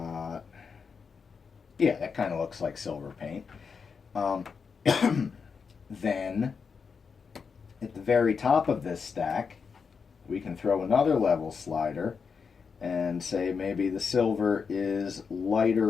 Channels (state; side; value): quieter; right; 5.7 dB